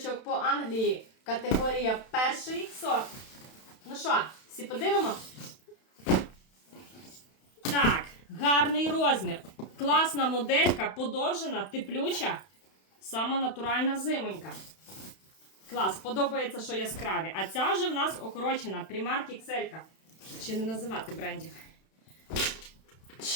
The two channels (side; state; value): right; late; 31 ms